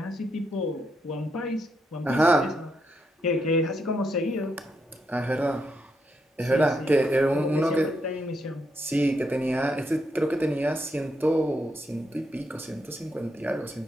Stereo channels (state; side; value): normal; both; correlation 0.80